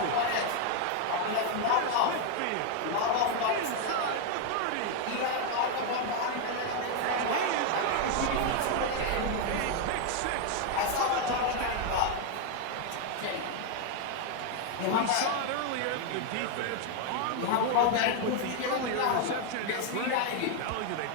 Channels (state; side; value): different; both; correlation 0.01